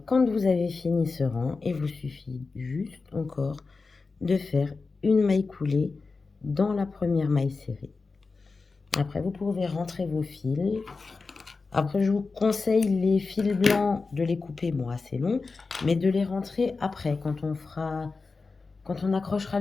quand vous avez fini ce rang, il vous suffit juste encore de faire une maille coulée dans la première maille serrée. Après, vous pouvez rentrer vos fils. Après, je vous conseille les fils blancs de les couper, bon, assez long, mais de les rentrer après, quand on accrochera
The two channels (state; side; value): quieter; right; 4.2 dB